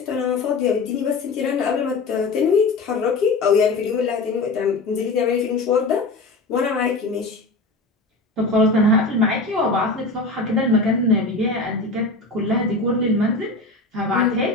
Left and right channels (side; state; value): right; quieter; 3.4 dB